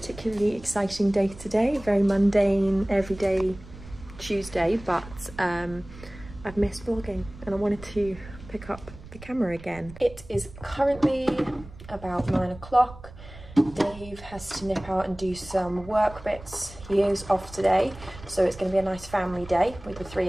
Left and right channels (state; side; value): noise; right; rumble, 17 dB below the sound